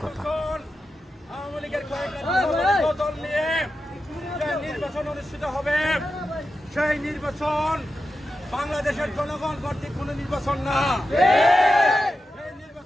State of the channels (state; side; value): normal; both; correlation 0.90